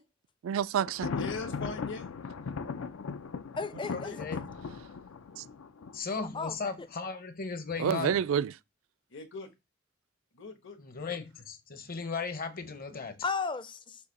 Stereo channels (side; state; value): both; normal; correlation -0.01